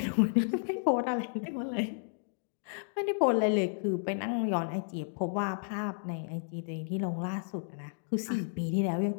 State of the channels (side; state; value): right; silent; digital silence